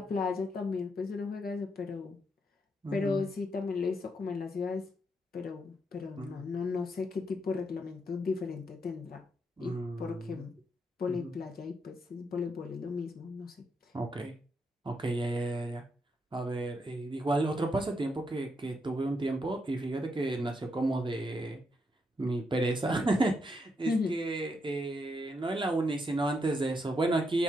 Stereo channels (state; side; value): normal; both; correlation 0.79